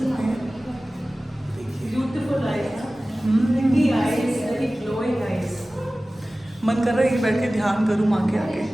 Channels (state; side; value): normal; both; correlation 0.97